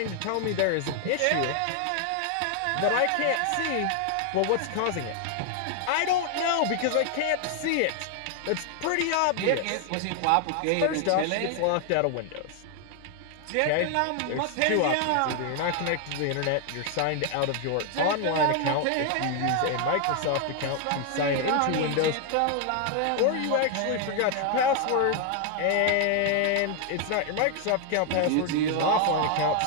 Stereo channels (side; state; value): both; different; correlation 0.00